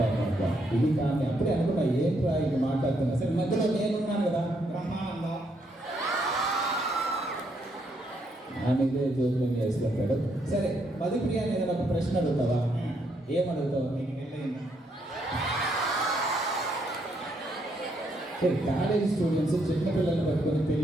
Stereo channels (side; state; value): both; normal; correlation 0.75